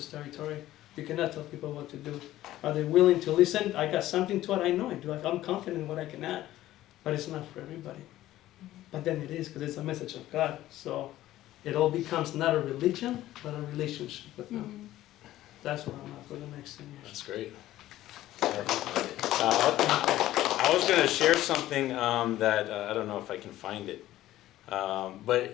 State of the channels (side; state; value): right; quieter; 14.6 dB